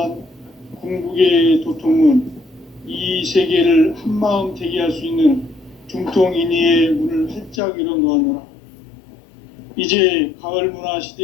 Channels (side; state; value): right; drops out; at 7.6 s